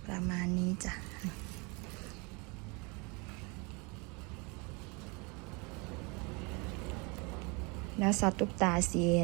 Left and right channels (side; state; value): left; quieter; 29.3 dB